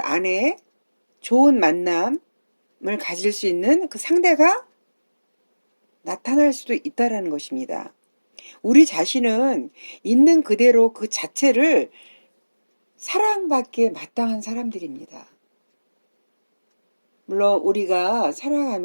좋은 만남을 가질 수 있는 그 상대가 나타날 수도 있다라는 것입니다. 우리 자신은 있는 그대로 그 자체를 사랑받기에 마땅한 사람들입니다. 물론 우리가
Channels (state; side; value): inverted; both; correlation -1.00